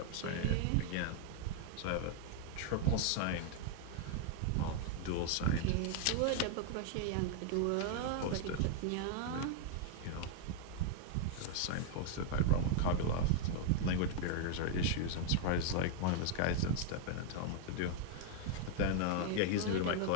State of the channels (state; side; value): different; both; correlation 0.00